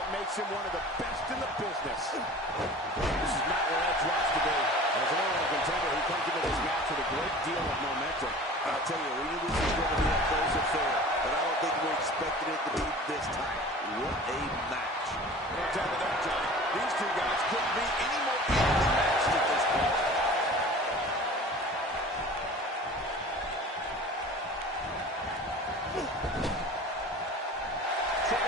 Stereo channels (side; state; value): both; normal; correlation 0.41